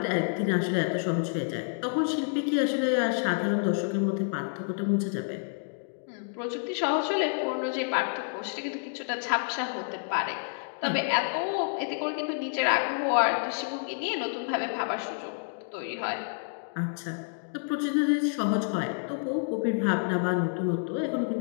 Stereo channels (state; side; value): silent; right; digital silence